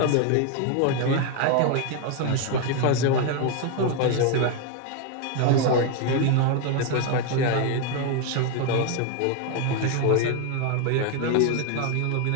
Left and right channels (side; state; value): both; different; correlation 0.01